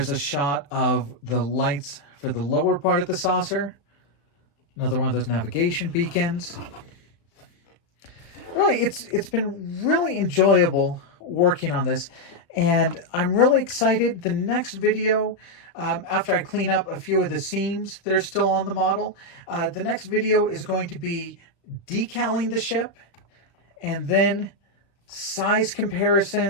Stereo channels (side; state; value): right; late; 35 ms